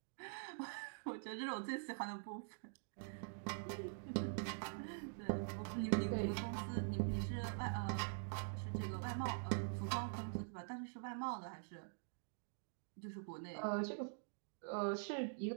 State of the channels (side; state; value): left; silent; digital silence